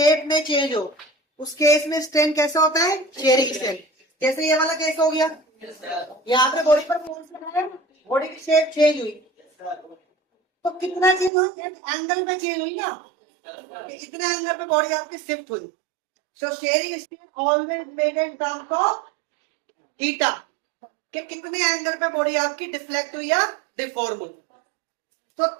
में चेंज हो, उस केस में स्ट्रेन कैसा होता है, शेयरिंग स्ट्रेन। जैसे ये वाला केस हो गया, यहाँ पे बॉडी पर फोर्स लगाया, बॉडी की शेप चेंज हुई, तो कितना चेंज हुई, एंगल में चेंज हुई ना, इतने एंगल पे बॉडी आपकी शिफ्ट हुई। सो sharing strain always made in terms of theta, कि कितने एंगल पे बॉडी आपकी डिफ्लेक्ट हुई या डिफॉर्म हुई। तो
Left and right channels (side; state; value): left; drops out; at 11.3 s